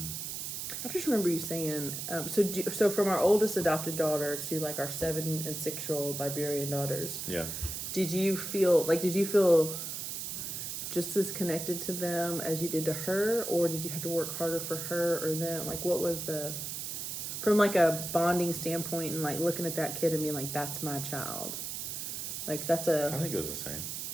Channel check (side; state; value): right; noise; hiss, 5 dB below the sound